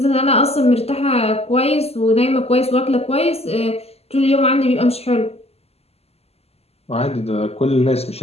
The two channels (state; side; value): late; right; 0.29 ms